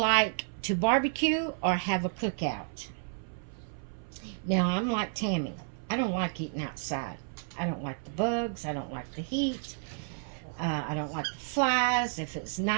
to barbecue or have a cookout? Now, I'm like Tammy. I don't like eating outside. I don't like the bugs. I don't like the heat. I don't like the flies. If it's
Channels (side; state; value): left; silent; 57 dB below the other